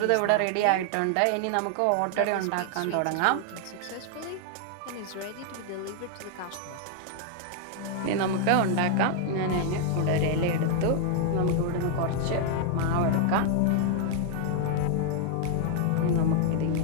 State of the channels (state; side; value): different; both; correlation 0.00